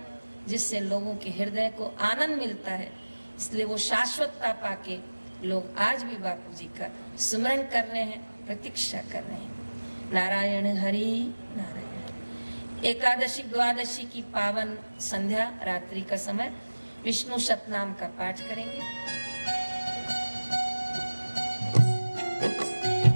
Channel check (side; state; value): both; inverted; correlation -1.00